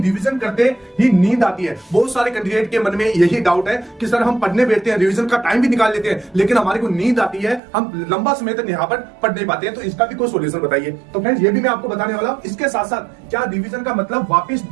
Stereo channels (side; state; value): left; drops out; at 7.6 s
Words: करते ही नींद आती है। बहुत सारे कैंडिडेट के मन में यही डाउट है कि सर हम पढ़ने बैठते हैं, रिवीजन का टाइम भी निकाल लेते हैं, लेकिन हमारे को नींद आती है, हम लंबा समय तक यहाँ पर पढ़ नहीं पाते हैं। तो इसका भी कोई सोल्यूशन बताइए। तो फ्रेंड्स ये भी मैं आपको बताने वाला हूँ। इसके साथ साथ क्या रिवीजन का मतलब वापस